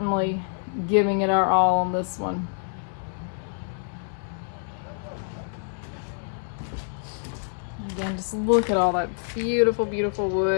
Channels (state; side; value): silent; right; 61 dB below the other